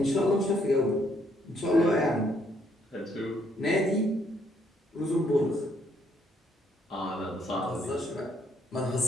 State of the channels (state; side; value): normal; both; correlation 0.70